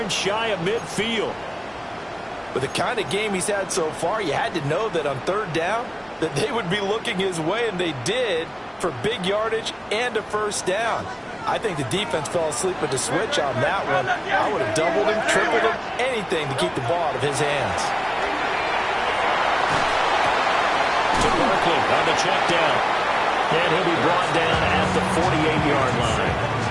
shy of midfield. With the kind of game he's had so far, you had to know that on 3rd down, that they would be looking his way, and they did, for big yardage and a first down. I think the defense fell asleep with the switch on that one. I would have doubled him, tripled him, anything to keep the ball out of his hands. To Barkley on the check down. And he'll be brought down at the 48-yard line.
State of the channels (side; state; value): both; identical; correlation 1.00